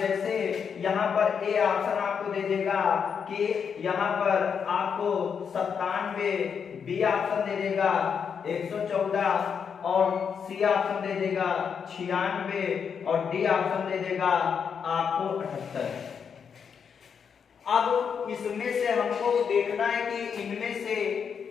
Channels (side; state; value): right; quieter; 6.8 dB